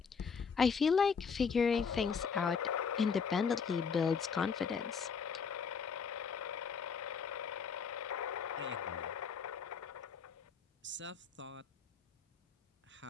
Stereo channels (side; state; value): right; quieter; 5.9 dB